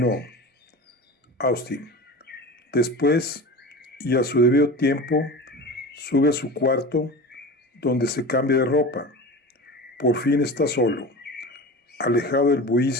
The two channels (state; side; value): normal; both; correlation 0.32